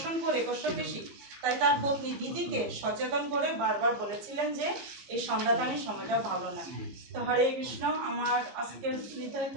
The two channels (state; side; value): late; left; 15 ms